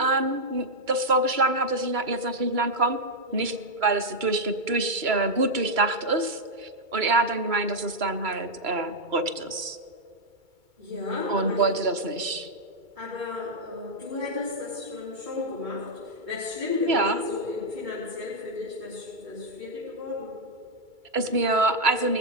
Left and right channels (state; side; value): late; left; 2.3 ms